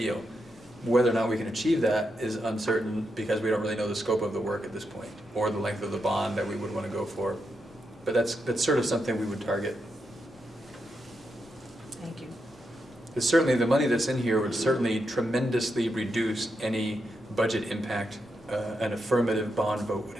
Whether or not we can achieve that is uncertain, because we don't really know the scope of the work at this point, or the length of the bond that we would want to go for. But that's sort of something we would target. Thank you. Because certainly the money that's in here would certainly tremendously reduce any budget impact an affirmative bond vote would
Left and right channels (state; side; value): normal; both; correlation 0.84